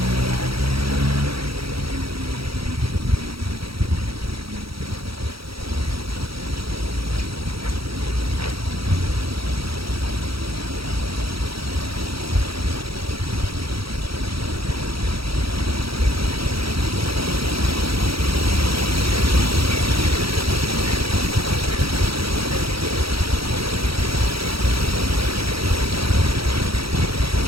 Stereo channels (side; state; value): left; late; 0.75 ms